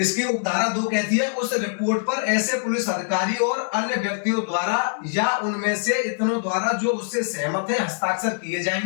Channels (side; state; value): right; silent; digital silence